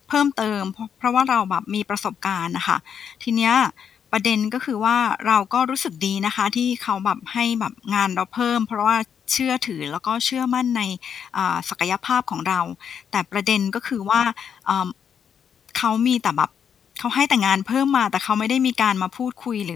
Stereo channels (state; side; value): quieter; right; 7.8 dB